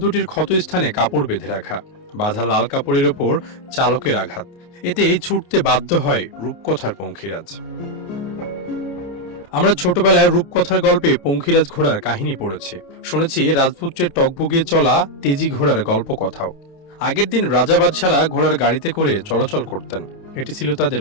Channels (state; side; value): late; right; 28 ms